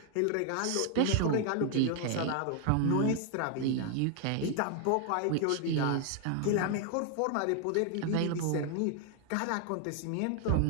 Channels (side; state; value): both; different; correlation 0.00